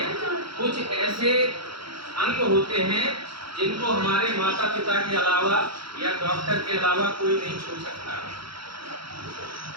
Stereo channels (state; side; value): late; left; 0.75 ms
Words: कुछ ऐसे अंग होते हैं जिनको हमारे माता पिता के अलावा या डॉक्टर के अलावा कोई नहीं छू सकता